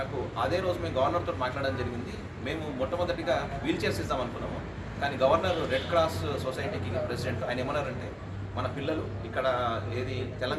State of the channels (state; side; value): identical; both; correlation 1.00